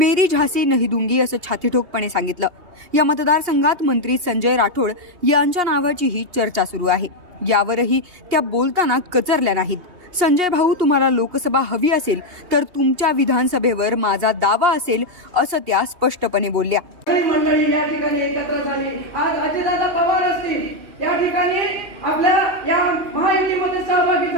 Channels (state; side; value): late; left; 2.8 ms